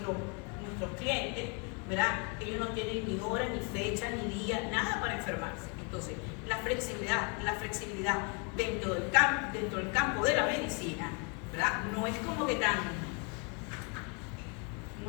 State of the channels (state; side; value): quieter; right; 34.7 dB